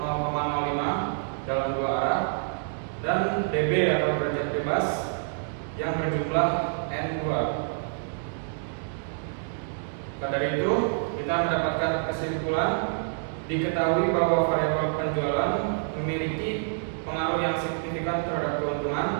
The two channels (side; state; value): left; silent; digital silence